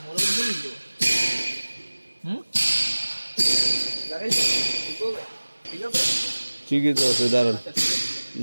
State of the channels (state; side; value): inverted; both; correlation -1.00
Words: ঠিকই তো আছে, দাঁড়ান